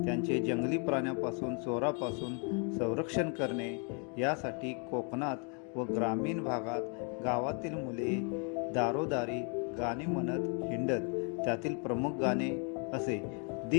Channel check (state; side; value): quieter; right; 38.3 dB